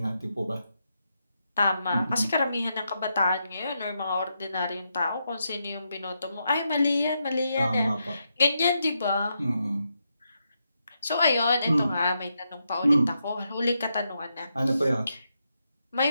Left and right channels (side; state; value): both; inverted; correlation -0.83